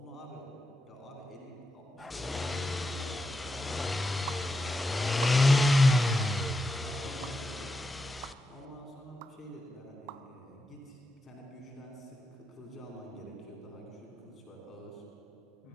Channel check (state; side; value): normal; both; correlation 0.88